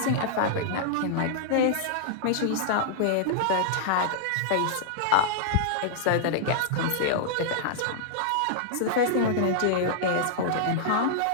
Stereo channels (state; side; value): different; both; correlation -0.01